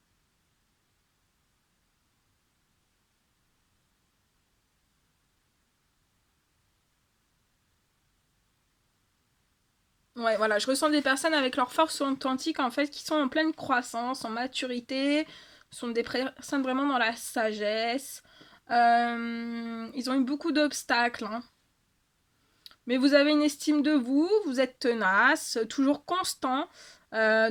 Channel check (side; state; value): both; identical; correlation 1.00